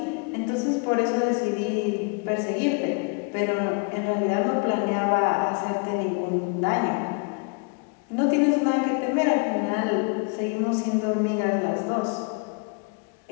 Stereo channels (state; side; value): quieter; right; 33.4 dB